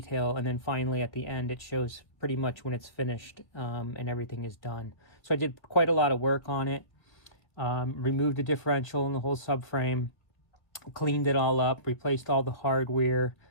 and then finally at the end it shows pretty much when it's finished and everything is done. So I did quite a lot of work on it. Removed the differential and the whole subframe, cleaned it all up, replaced all the hardware,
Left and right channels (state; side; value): late; right; 1.8 ms